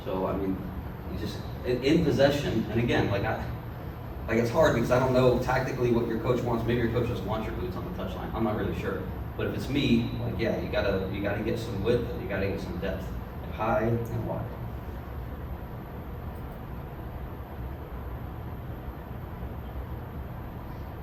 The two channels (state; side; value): identical; both; correlation 1.00